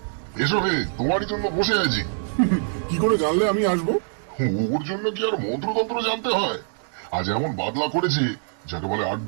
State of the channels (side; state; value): left; silent; digital silence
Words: এসো হে, তোমারই জন্য বসে আছি। কি করে জানলে আমি আসবো? ওর জন্য কি আর মন্ত্রতন্ত্র জানতে হয়? আজ এমন বাদলা করেছি যাকে বলে